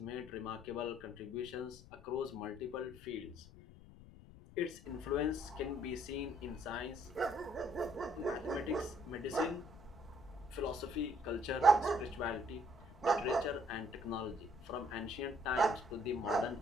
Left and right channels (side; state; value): left; noise; rumble, 19 dB below the sound